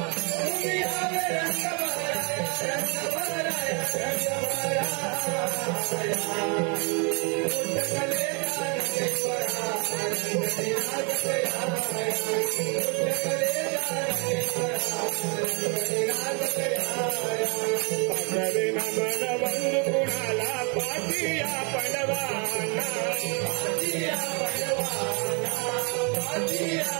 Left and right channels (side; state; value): left; quieter; 34.1 dB